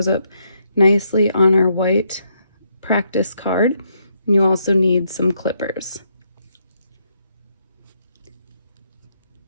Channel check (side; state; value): both; inverted; correlation -0.76